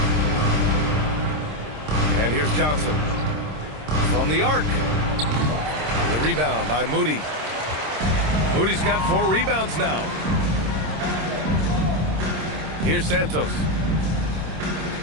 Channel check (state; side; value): late; left; 26 ms